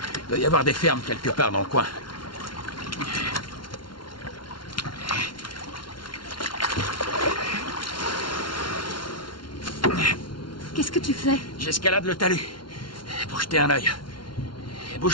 Il doit y avoir des fermes quelque part dans le coin. Qu'est-ce que tu fais? J'escalade le talus pour jeter un œil.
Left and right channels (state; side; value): late; right; 0.72 ms